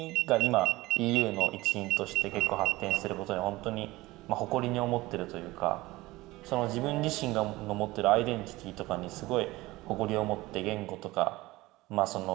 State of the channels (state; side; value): quieter; left; 19.6 dB